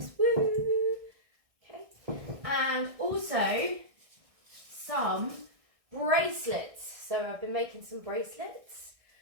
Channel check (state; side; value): late; left; 1.6 ms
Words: woo. Okay. And also some bracelets. So I've been making some bracelets.